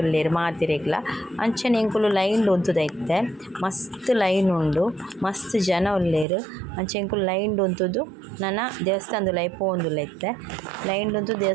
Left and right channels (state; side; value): drops out; left; at 6.2 s